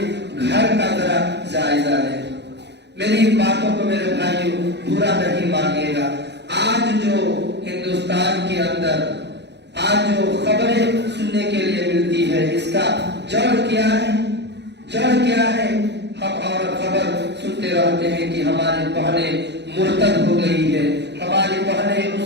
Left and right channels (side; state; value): left; late; 0.50 ms